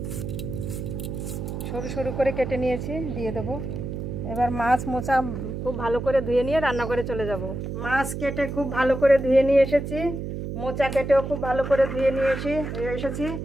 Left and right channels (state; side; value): noise; right; hum, 5 dB below the sound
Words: সরু সরু করে কেটে নিয়েছি, দিয়ে দেব। এবার মাছ মোচা খুব ভালো করে ধুয়ে নিয়ে রান্না করে চলে যাব। মাছ কেটে খুব ভালো করে ধুয়ে নিয়ে এসেছি, মোচা কেটেও খুব ভালো করে ধুয়ে নিয়ে এসেছি।